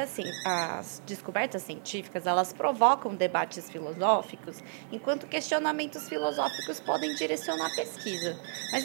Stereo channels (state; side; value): silent; left; digital silence